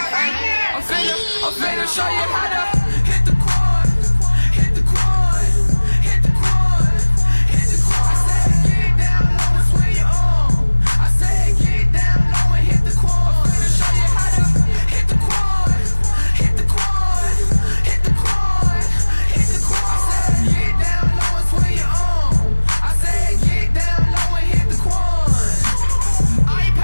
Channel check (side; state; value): both; inverted; correlation -1.00